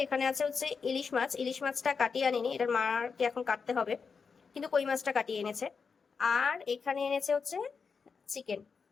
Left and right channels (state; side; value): quieter; right; 5.5 dB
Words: এখানে আছে হচ্ছে ইলিশ মাছ। ইলিশ মাছটা কাটিয়ে আনিনি, এটার মাকে এখন কাটতে হবে, কিন্তু কই মাছটা কাটিয়ে এনেছে। আর এখানে এনেছে হচ্ছে চিকেন।